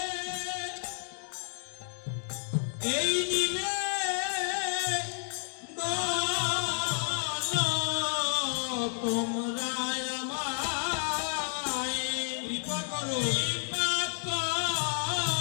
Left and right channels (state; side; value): silent; right; digital silence